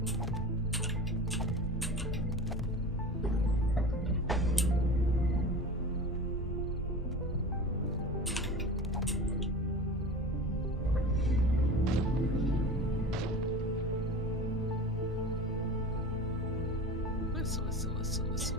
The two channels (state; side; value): normal; both; correlation 0.33